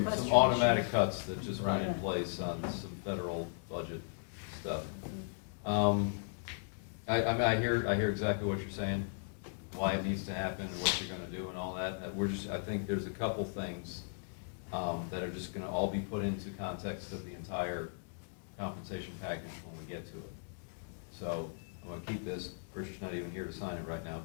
automatic cuts that just went in Right. place on some federal budget stuff. I mean, I hear exactly what you're saying, why it needs to happen and what you're gonna do and all that. I think there's a couple things, that are just gonna all be put into context of the entire compensation package when we get to it. So, I'm gonna keep this, Christian's not even here to sign it right now,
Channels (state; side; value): silent; right; digital silence